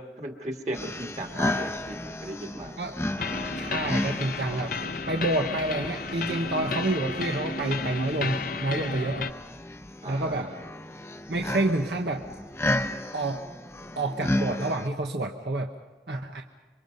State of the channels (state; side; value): normal; both; correlation 0.51